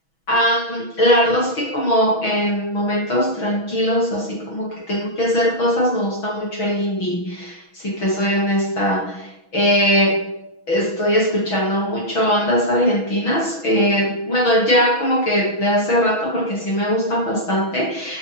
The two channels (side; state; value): right; late; 6.2 ms